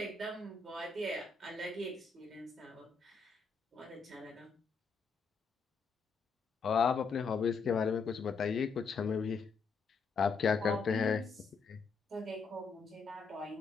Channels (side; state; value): right; quieter; 5.0 dB